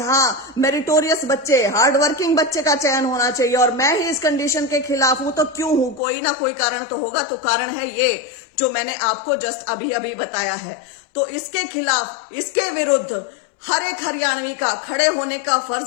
मेरिटोरियस बच्चे, हार्ड वर्किंग बच्चे का चयन होना चाहिए और मैं ही इस कंडीशन के खिलाफ हूं, तो क्यों हूं? कोई ना कोई कारण तो होगा। तो कारण है ये जो मैंने आपको जस्ट अभी बताया है। तो इसके खिलाफ, इसके विरुद्ध हर एक हरियाणवी का खड़े होने का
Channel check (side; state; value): right; drops out; at 6.0 s